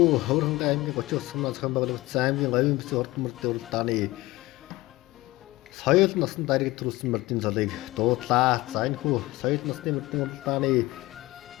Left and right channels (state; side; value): quieter; right; 19.6 dB